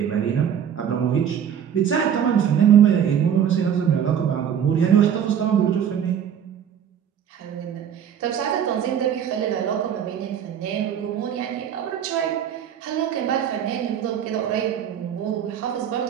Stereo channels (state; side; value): quieter; left; 8.7 dB